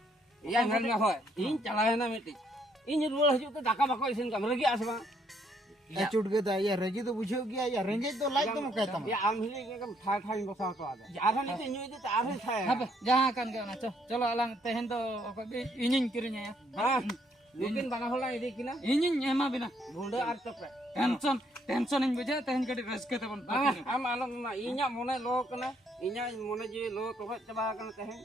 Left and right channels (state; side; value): normal; both; correlation 0.70